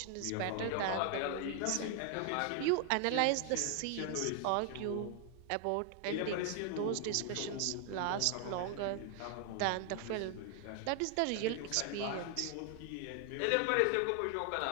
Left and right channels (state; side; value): different; both; correlation 0.00